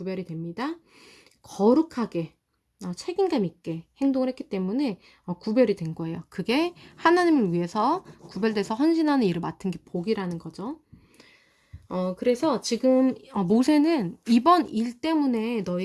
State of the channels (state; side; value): identical; both; correlation 1.00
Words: 됩니다. 거룩하게 책임감 있게 행동을 했기 때문에 구별이 된 거예요. 그게 하나님을 위해서 구별돼서 헌신하는 일을 맡은 게 복이라는 거죠. 그래서 지금 모세는 이번 일 때문에